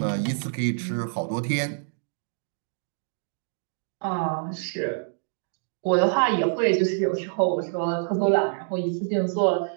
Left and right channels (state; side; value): silent; left; digital silence